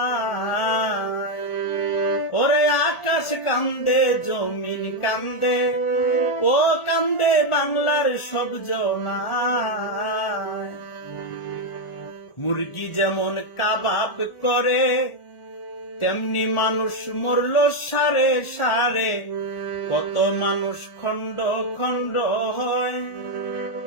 ওরে আকাশ কান্দে, জমিন কান্দে, ও কান্দে বাংলার সব জনায়। মুরগি যেমন কাবাব করে, তেমনি মানুষ মরল সারে সারে। কত মানুষ খণ্ড খণ্ড হয়,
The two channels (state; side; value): late; right; 1.4 ms